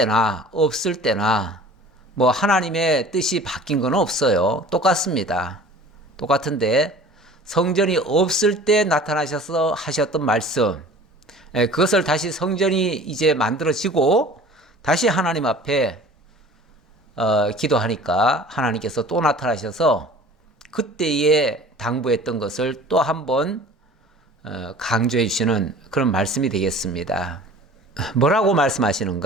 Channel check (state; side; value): normal; both; correlation 0.45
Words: 없을 때나 뭐 하나님의 뜻이 바뀐 건 없어요. 똑같습니다. 똑같은데 성전이 없을 때 나타나셔서 하셨던 말씀, 그것을 다시 성전이 이제 만들어지고 다시 하나님 앞에 기도하니까 하나님께서 또 나타나셔서 그때에 당부했던 것을 또 한번 강조해 주시는 그런 말씀이 되겠습니다. 뭐라고